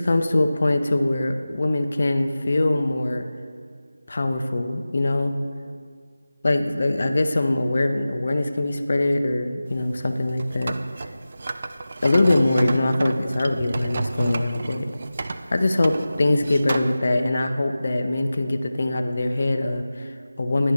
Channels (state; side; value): inverted; both; correlation -0.96